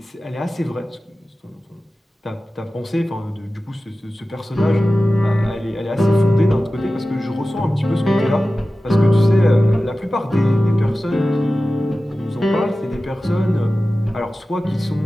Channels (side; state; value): both; normal; correlation 0.95